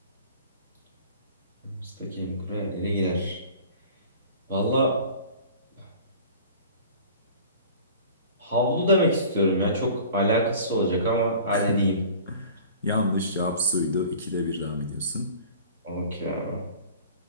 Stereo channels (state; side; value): inverted; both; correlation -0.44